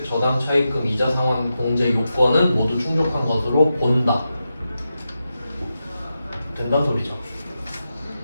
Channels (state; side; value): inverted; both; correlation -0.89